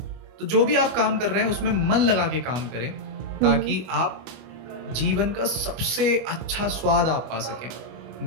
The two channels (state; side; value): late; left; 25 ms